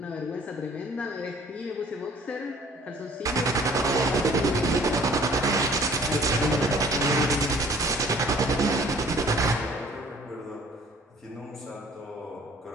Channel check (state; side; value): normal; both; correlation 0.53